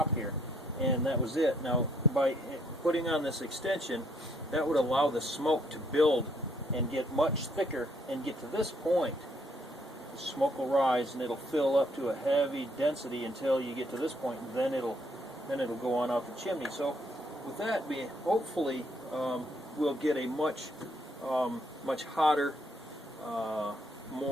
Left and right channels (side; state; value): both; normal; correlation 0.69